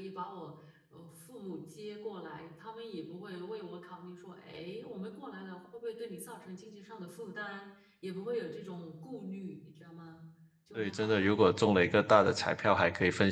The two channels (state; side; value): identical; both; correlation 1.00